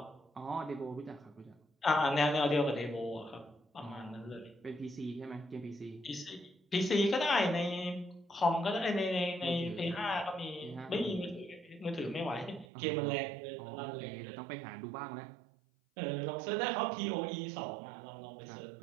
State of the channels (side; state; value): left; drops out; at 12.7 s